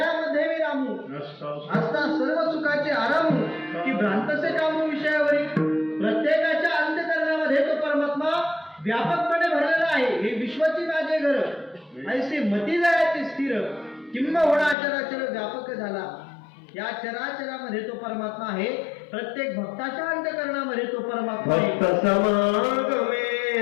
मी रामू असता सर्व सुखाचे आरामू की भ्रांतसे कामू विषयावरील. प्रत्येकाच्या अंतःकरणामध्ये तो परमात्मा व्यापकपणे भरलेला आहे. हे विश्वाची माझे घर ऐसे मती जायचे स्थिर किंबहुना चराचर व्यापक झाला. या चराचरामध्ये तो परमात्मा आहे. प्रत्येक भक्ताच्या अंतःकरणामध्ये तो परमात्मा आहे. भक्त समागमे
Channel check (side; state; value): right; drops out; at 14.8 s